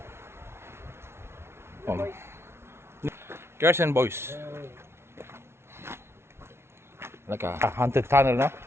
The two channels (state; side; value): late; left; 0.12 ms